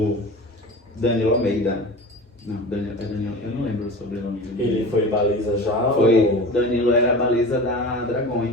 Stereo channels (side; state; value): both; normal; correlation 0.34